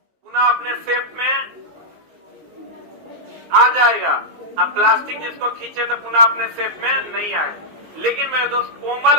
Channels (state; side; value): late; left; 19 ms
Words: अपने शेप में आ जाएगा। अब प्लास्टिक जिसको खींचे तो पुनः अपने शेप में नहीं आए। लेकिन मेरे दोस्त कोमल,